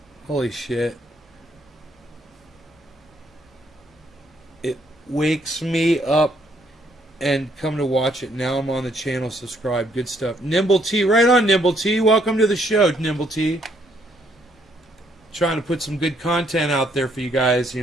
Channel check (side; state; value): both; normal; correlation 0.70